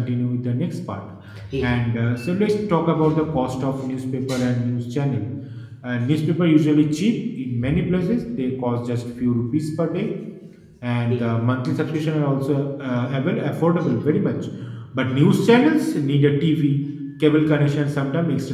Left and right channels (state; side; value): identical; both; correlation 1.00